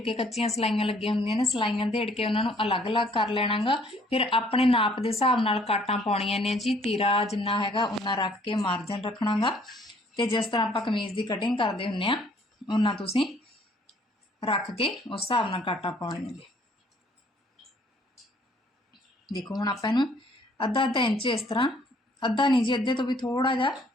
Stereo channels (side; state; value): both; normal; correlation 0.61